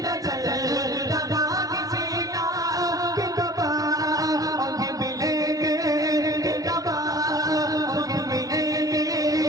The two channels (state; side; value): late; left; 0.18 ms